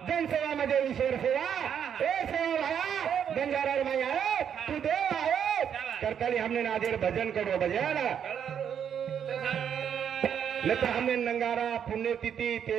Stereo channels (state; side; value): quieter; left; 8.4 dB